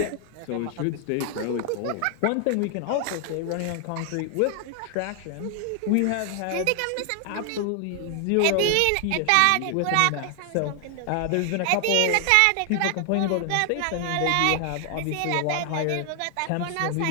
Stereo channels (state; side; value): different; both; correlation 0.00